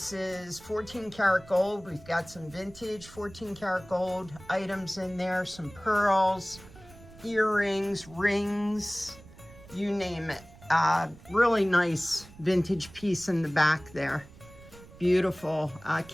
is 14 karat gold. We've got some vintage 14 karat gold items in there, some pearls, earrings, rings, you name it. Really nice vintage piece in the back there. Beautiful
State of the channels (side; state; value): right; noise; rumble, 21 dB below the sound